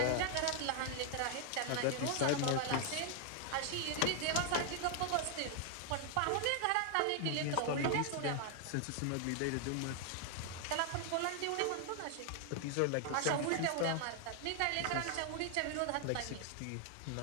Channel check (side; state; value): both; different; correlation 0.00